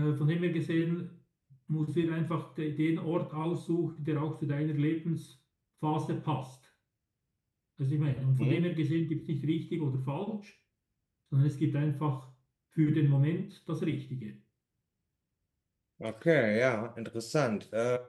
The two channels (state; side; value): identical; both; correlation 1.00